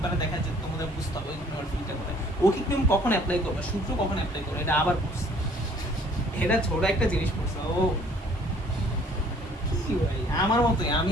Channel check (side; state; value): both; normal; correlation 0.57